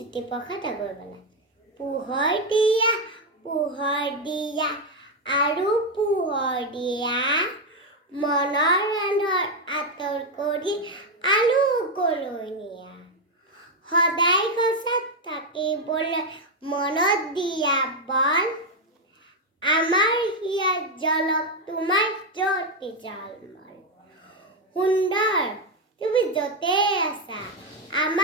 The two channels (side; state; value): both; normal; correlation 0.05